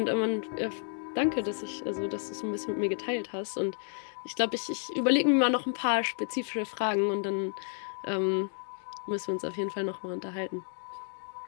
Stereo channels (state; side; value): silent; right; 57 dB below the other